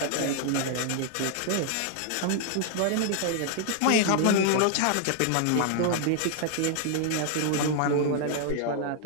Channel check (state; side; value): different; both; correlation 0.00